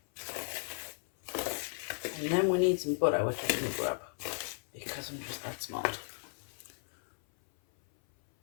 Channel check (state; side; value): silent; right; 55 dB below the other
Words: And then we need some butter, which I'm going to grab because I'm just that smart.